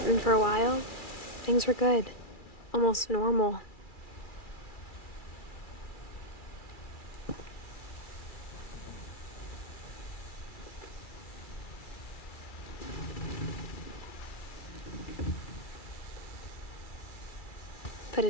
And for a while, things were good. Almost normal. But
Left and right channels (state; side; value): late; right; 2.3 ms